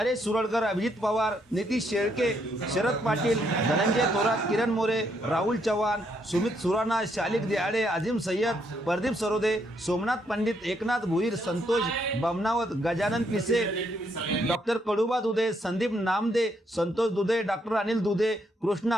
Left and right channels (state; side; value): normal; both; correlation 0.74